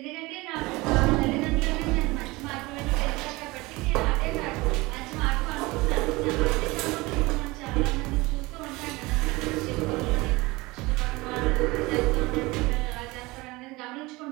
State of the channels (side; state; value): left; quieter; 22.2 dB